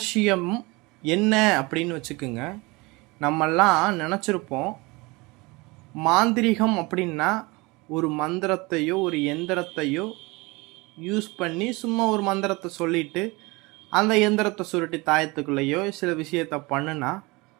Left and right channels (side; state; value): left; quieter; 24.6 dB